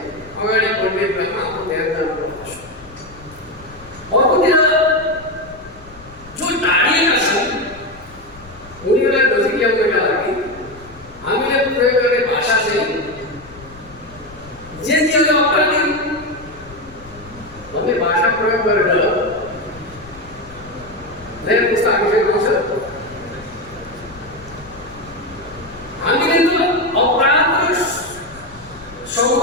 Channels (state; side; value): noise; left; rumble, 20 dB below the sound